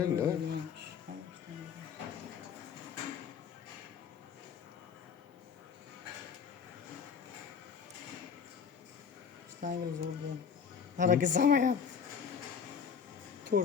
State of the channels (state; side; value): quieter; right; 6.8 dB